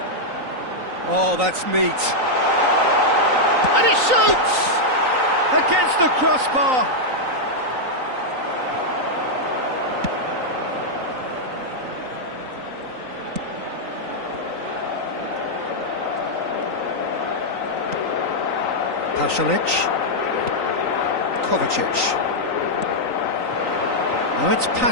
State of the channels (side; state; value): left; late; 3.9 ms